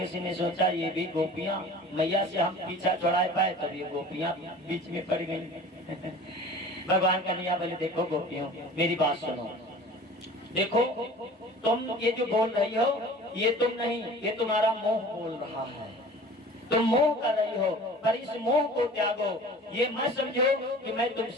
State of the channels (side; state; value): both; normal; correlation 0.43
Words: ने सोचा ये भी गोपियां मैया से हम पीछा छुड़ा पाए, तब ये गोपियां बीच में पड़ गई। भगवान कन्हैया बोले देखो गोपियों मेरी बात सुनो, देखो तुम ये जो बोल रही हो ये तुम नहीं, ये तुम्हारा मोह बोल रहा है। तुम मोह कर रही हो, पर इस मोह को त्यागो। ये मत समझो कि मैं